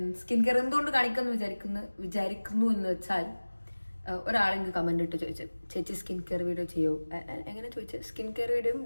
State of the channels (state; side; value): inverted; both; correlation -1.00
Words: സ്കിൻ കെയർ എന്തുകൊണ്ട് കാണിക്കുമെന്ന് വിചാരിക്കുന്നു എന്ന് വെച്ചാൽ, ഒരാളെങ്കിൽ കമൻ്റ് ഇട്ട് ചോദിച്ചു, ചേച്ചി സ്കിൻ കെയർ വീഡിയോ ചെയ്യോ? എങ്ങനെ ചോദിച്ചു? സ്കിൻ കെയർ വീഡിയോയും